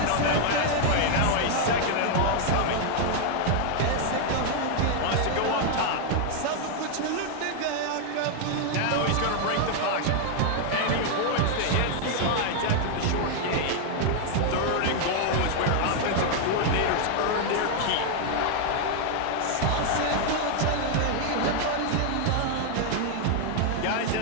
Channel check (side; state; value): both; different; correlation 0.00